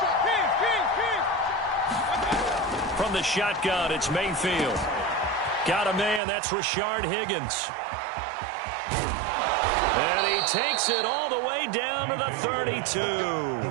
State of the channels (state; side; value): drops out; left; at 6.2 s